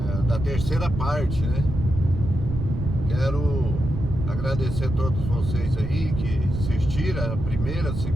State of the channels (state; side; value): noise; right; rumble, 4 dB below the sound